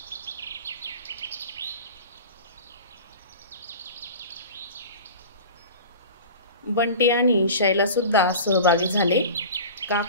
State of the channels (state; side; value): inverted; both; correlation -0.36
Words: बंटी आणि शैला सुद्धा सहभागी झाले.